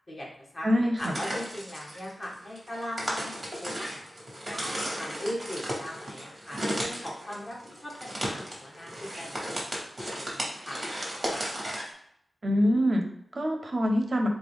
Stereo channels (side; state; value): both; normal; correlation 0.94